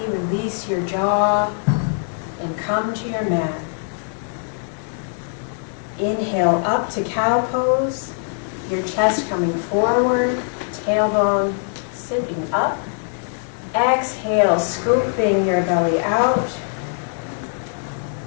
release your jaw, and come to your mat. Inhale up to cow pose, your chest coming forward, tailbone sitting up. Exhale, scooping your belly out.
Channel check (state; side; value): silent; right; digital silence